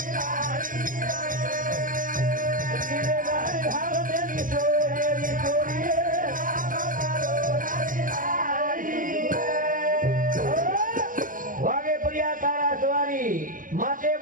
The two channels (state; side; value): late; left; 0.39 ms